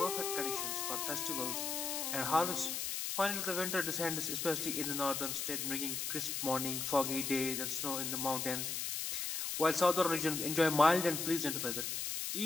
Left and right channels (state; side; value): noise; left; hiss, 2 dB below the sound